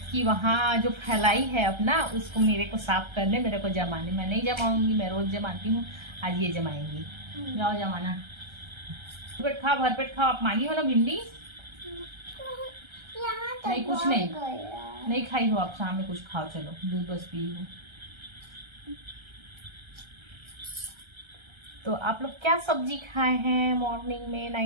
कि वहाँ जो फैलाई है अपना, उसको मेरे को साफ करने, मेरे को जमाने। मैं नहीं जमाऊंगी, मैं रोज जमाती हूँ, आज ये जमाएंगी। जाओ जमाना, पेट खाओ, भरपेट खाओ। आप मांगी हो ना भिंडी? नहीं कुछ नहीं, नहीं खाई हो आप, शाम में कुछ खाओ, चलो दूध बस पी हो। तो आप लोग क्या सब्जी खाए हैं मॉर्निंग में,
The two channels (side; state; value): left; late; 1.3 ms